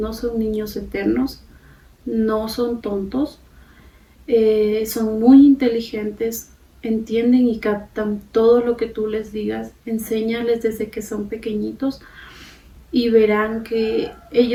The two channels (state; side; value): identical; both; correlation 1.00